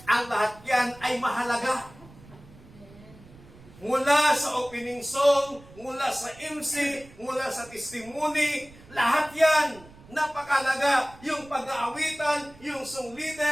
ang lahat yan ay mahalaga. Mula sa opening song, mula sa MC, mula sa testimony, lahat yan napakahalaga. Yung pag-aawitan, yung song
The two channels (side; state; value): right; noise; rumble, 22 dB below the sound